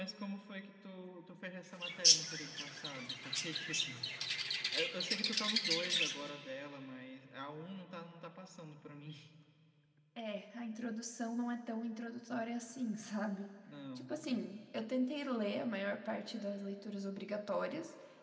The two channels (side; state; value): both; identical; correlation 1.00